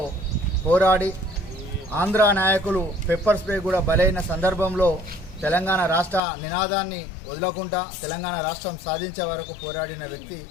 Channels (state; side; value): drops out; right; at 6.2 s